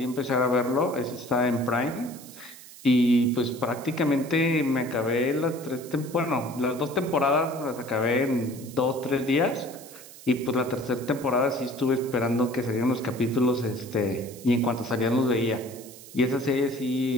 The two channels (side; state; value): right; noise; hiss, 18 dB below the sound